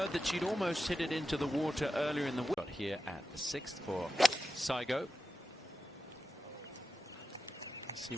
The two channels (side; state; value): both; normal; correlation 0.90